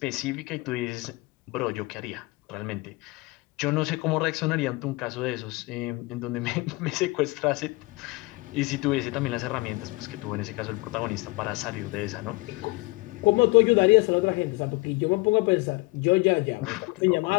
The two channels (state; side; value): quieter; right; 23.9 dB